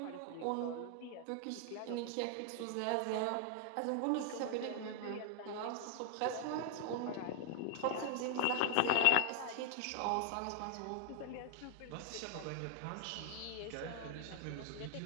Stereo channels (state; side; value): different; both; correlation 0.00